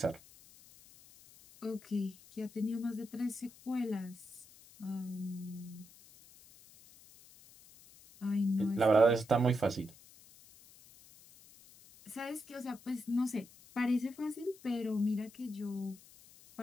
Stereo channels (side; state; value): left; noise; hiss, 23 dB below the sound